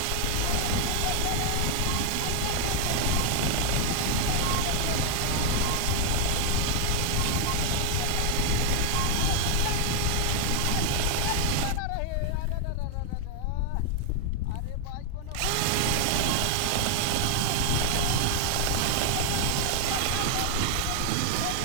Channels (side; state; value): both; different; correlation 0.00